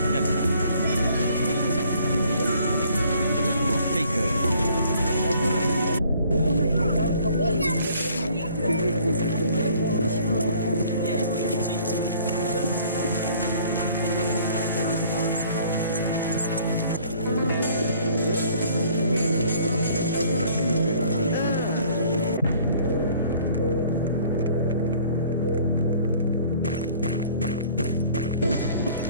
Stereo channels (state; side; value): inverted; both; correlation -0.57